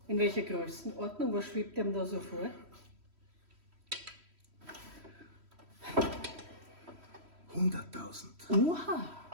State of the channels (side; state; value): left; late; 3.1 ms